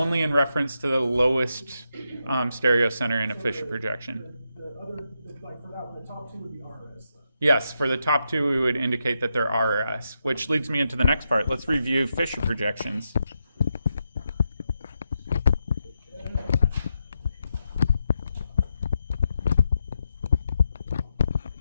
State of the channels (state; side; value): inverted; both; correlation -0.84